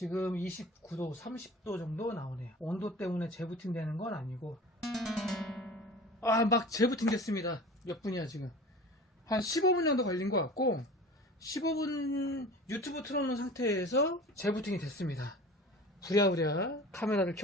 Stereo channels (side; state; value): both; normal; correlation 0.39